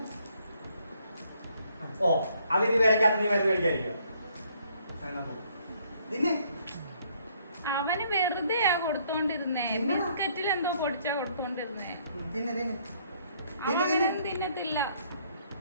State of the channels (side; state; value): both; inverted; correlation -0.66